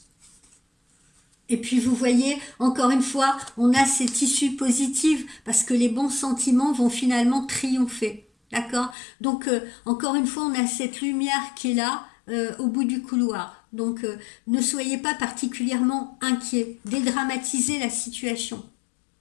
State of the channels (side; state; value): right; drops out; at 9.0 s